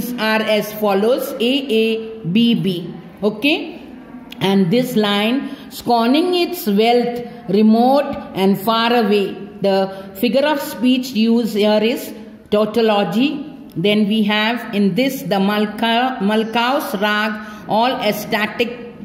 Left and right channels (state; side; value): identical; both; correlation 1.00